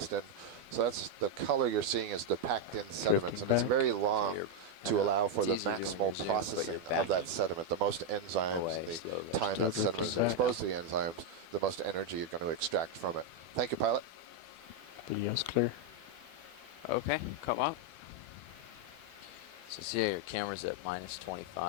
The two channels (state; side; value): late; left; 12 ms